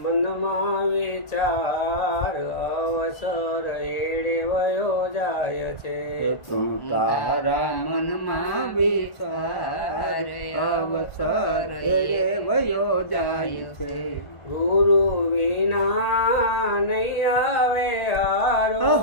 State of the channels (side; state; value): right; late; 1.4 ms